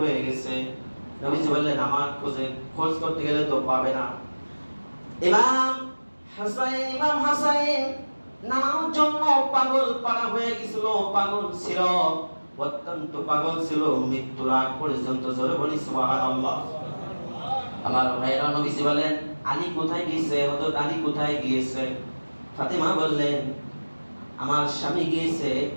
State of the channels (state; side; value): inverted; both; correlation -1.00